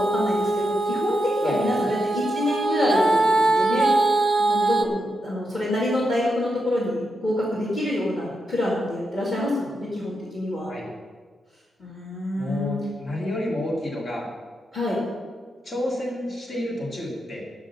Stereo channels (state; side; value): normal; both; correlation 0.85